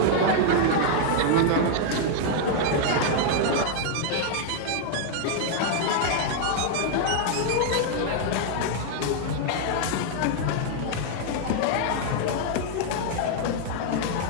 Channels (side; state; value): both; different; correlation 0.00